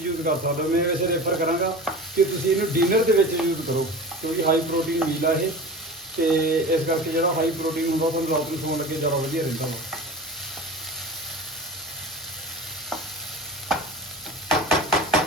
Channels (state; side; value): normal; both; correlation 0.34